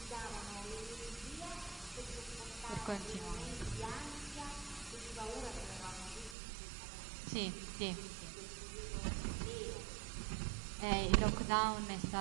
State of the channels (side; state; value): left; drops out; at 6.4 s